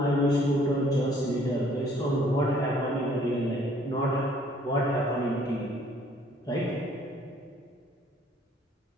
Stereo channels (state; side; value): normal; both; correlation 0.60